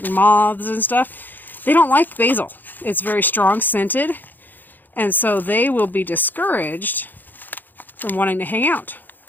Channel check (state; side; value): late; right; 0.088 ms